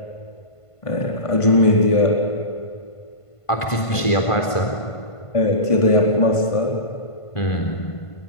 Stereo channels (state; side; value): late; right; 1.5 ms